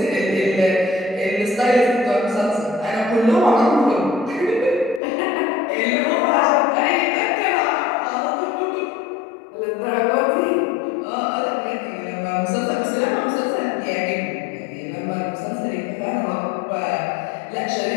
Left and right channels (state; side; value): drops out; right; at 5.0 s